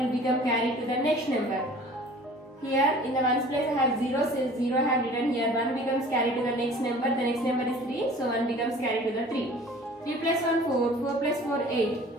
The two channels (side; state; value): both; normal; correlation 0.47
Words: become carried to the next number. Here in the 1's place I have 0, so 0 I have written here. 1 becomes carried to the next number. The next number is 3, so 1 becomes carried to the 3. 3 plus 1 4, 4 plus 4 8.